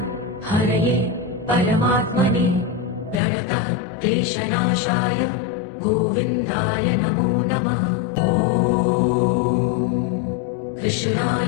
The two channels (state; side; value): drops out; right; at 3.2 s